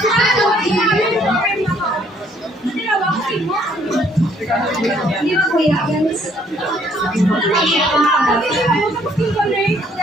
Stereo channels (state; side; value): normal; both; correlation 0.64